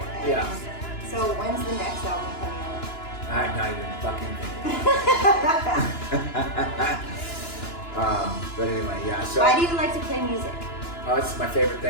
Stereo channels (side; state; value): right; late; 2.9 ms